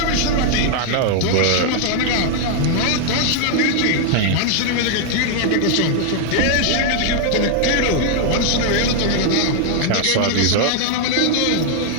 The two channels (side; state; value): both; different; correlation 0.00